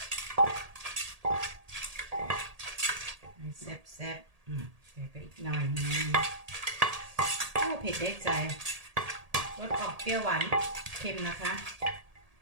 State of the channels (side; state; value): left; late; 1.8 ms